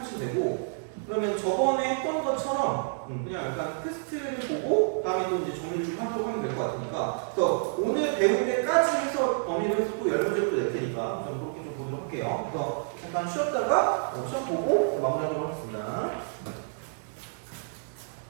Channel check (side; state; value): left; silent; digital silence